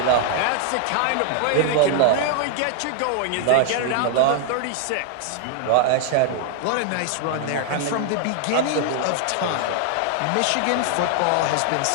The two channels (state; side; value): different; both; correlation 0.00